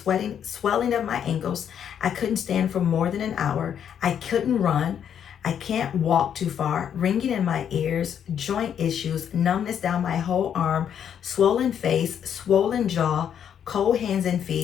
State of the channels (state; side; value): quieter; right; 8.8 dB